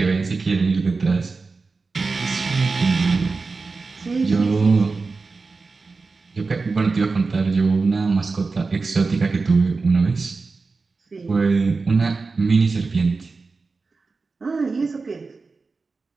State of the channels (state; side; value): quieter; left; 4.1 dB